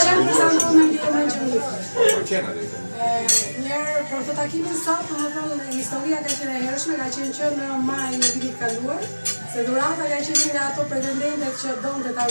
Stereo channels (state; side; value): inverted; both; correlation -1.00